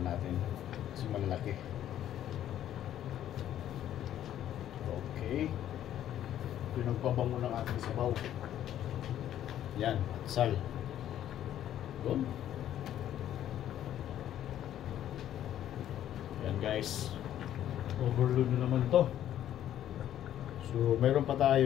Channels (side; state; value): right; quieter; 11.4 dB